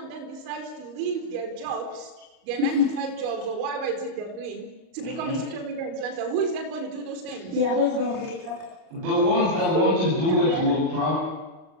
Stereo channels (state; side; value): late; left; 38 ms